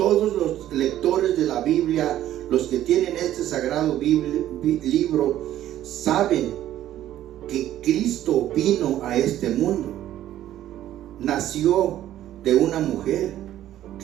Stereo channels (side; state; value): left; quieter; 12.6 dB